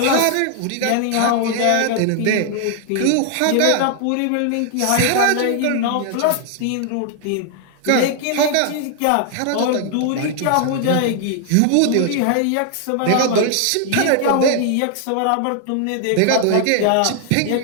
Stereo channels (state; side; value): different; both; correlation 0.00